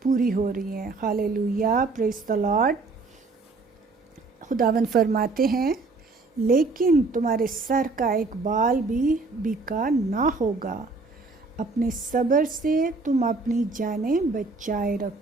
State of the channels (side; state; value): left; quieter; 3.7 dB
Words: پوری ہو رہی ہیں. ہالےلویا. پریز دی لارڈ. خداوند فرماتے ہیں لیکن تمہارے سر کا ایک بال بھی بیکار نہ ہوگا، اپنے صبر سے تم اپنی جانیں بچائے